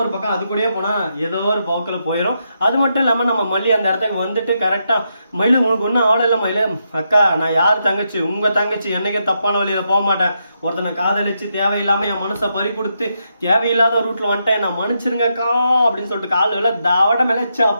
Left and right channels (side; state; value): both; inverted; correlation -0.82